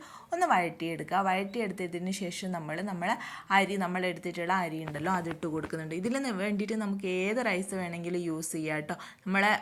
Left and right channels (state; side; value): identical; both; correlation 1.00